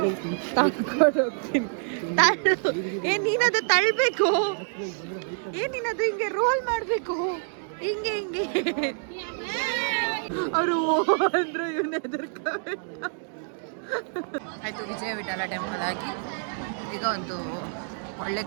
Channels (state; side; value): silent; left; 60 dB below the other